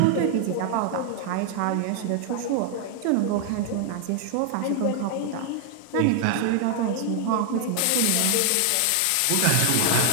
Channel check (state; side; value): different; both; correlation 0.00